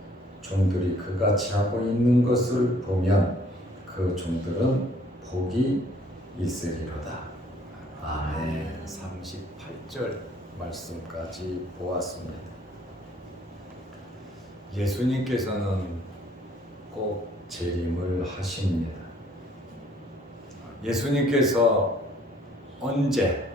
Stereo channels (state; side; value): normal; both; correlation 0.60